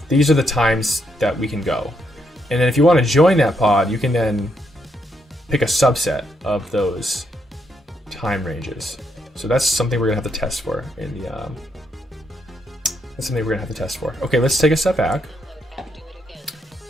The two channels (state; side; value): normal; both; correlation 0.78